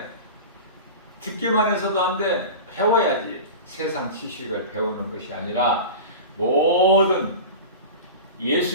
듣기만 해서도 안 돼. 배워야지. 세상 지식을 배우는 것이 아니라 모든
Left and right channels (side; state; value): both; inverted; correlation -0.32